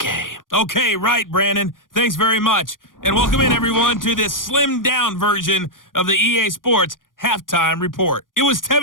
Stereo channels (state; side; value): late; right; 0.90 ms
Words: Okay, right, Brandon. Thanks very much. And welcome in, everyone, to this slimmed-down version of the EA Sports Halftime Report. It was